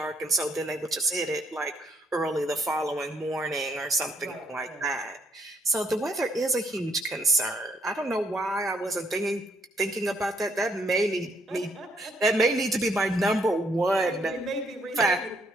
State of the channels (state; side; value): normal; both; correlation 0.70